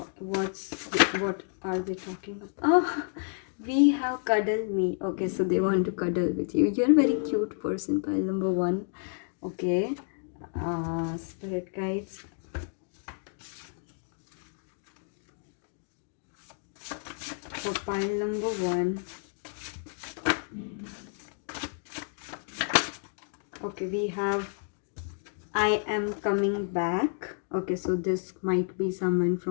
are they talking about? Oh, we have cuddle me. Okay, so they want to cuddle with you. You're a very cute person, pile number one. Okay, spirit guides, for pile number one. Okay, we have I am coming back. Okay, so this might be someone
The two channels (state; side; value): silent; right; 58 dB below the other